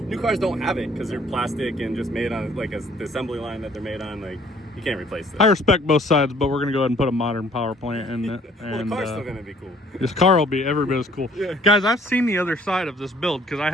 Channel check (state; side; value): normal; both; correlation 0.58